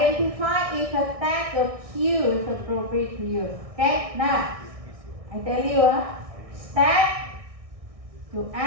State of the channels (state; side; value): late; left; 1.6 ms